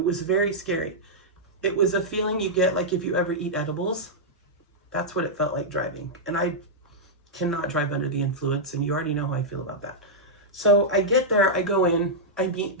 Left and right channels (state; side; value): normal; both; correlation -0.07